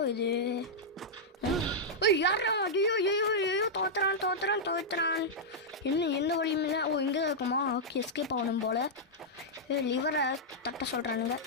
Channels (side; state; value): both; normal; correlation -0.07